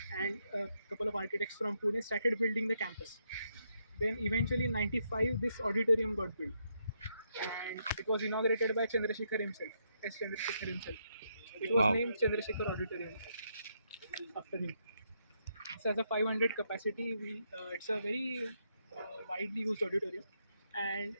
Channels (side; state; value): both; inverted; correlation -0.78